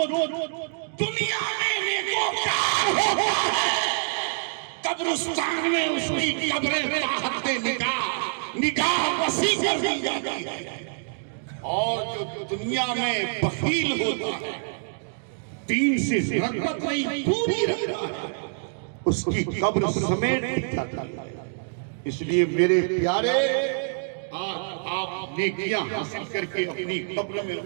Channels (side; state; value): left; silent; digital silence